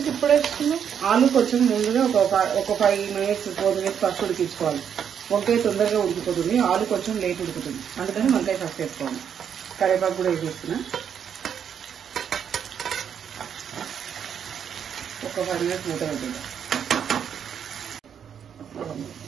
ఇప్పుడు వేసుకున్నావు? ఆలు కొంచెం ముందుగా ఒక 5 మినిట్స్ 4 మినిట్స్ ఫస్ట్ ఉడికించుకోవాలి. వంకాయ తొందరగా ఉడికిపోతుంది, ఆలు కొంచెం లేట్ ఉడుకుతుంది. అందుకని వంకాయ ఫస్ట్ వేసుకోవాలి. కరివేపాకు కూడా వేసేస్తున్నా. ఒక 5 మినిట్స్ మూత పెట్టింది.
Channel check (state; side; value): quieter; left; 8.1 dB